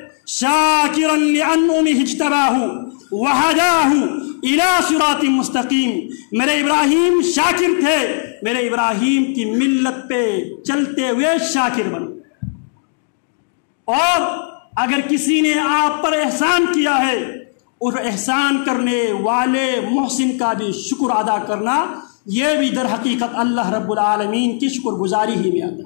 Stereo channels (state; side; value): silent; right; digital silence